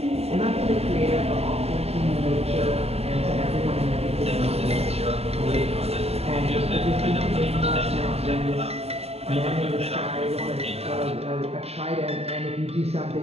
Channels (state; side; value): late; left; 0.29 ms